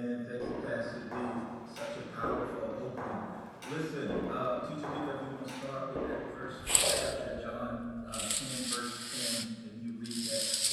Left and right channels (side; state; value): both; identical; correlation 1.00